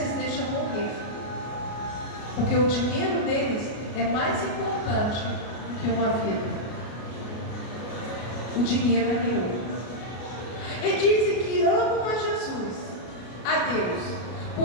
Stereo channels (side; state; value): right; late; 33 ms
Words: deixam morrer, porque o dinheiro deles é mais importante do que uma vida. O dinheiro é meu. E dizem que amam a Jesus, a Deus.